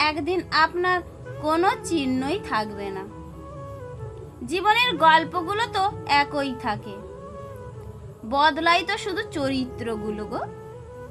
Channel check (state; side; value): identical; both; correlation 1.00